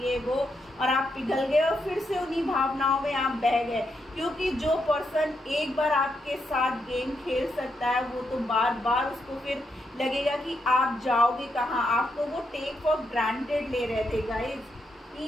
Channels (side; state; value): both; normal; correlation 0.81